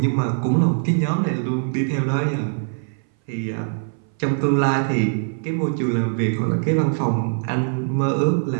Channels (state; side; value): silent; left; 60 dB below the other